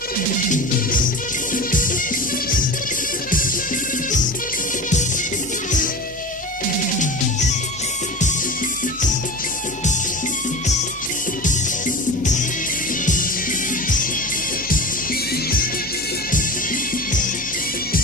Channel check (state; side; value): normal; both; correlation 0.32